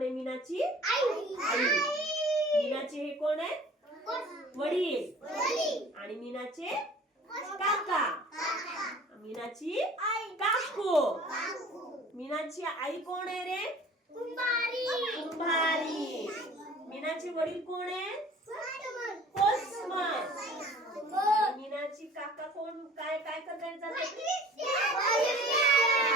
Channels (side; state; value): both; normal; correlation 0.47